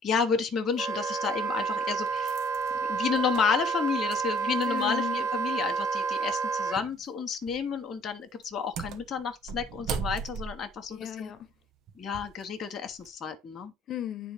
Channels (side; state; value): both; normal; correlation 0.59